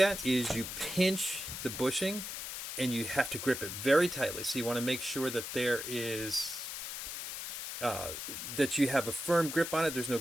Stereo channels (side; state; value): left; noise; hiss, 6 dB below the sound